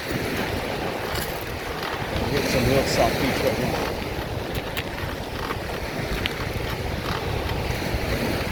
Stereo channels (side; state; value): both; identical; correlation 1.00